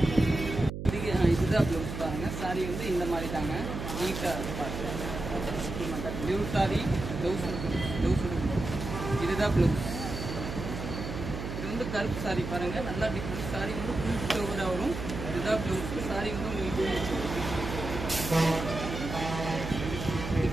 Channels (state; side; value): noise; right; hum, 6 dB below the sound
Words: இதுதான் ப்ளவுஸ் பாருங்கள். சாரி வந்து இந்த மாதிரி தாங்க. நீட்டாக பாருங்கள். Pure sorry. ப்ளவுஸ் இதுதான் ப்ளவுஸ். இது வந்து கருப்பு சாரி பாருங்கள். நல்லா டிஃப்ரெண்ட் சாரி வந்து ஃபுல் ஃப்ளவராக வரும். இதுதான் ப்ளவுஸ். சாரி வந்து உங்களுக்கு